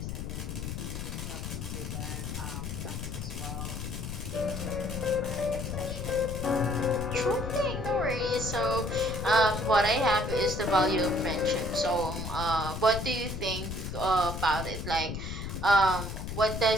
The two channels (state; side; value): noise; left; rumble, 5 dB below the sound